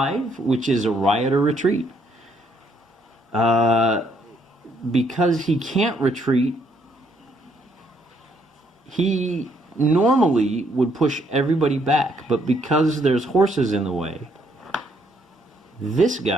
which is a Rioter retreat. Because he can't retreat, he normally would push everybody back, but because there's horses in the way, this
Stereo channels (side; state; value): both; normal; correlation 0.70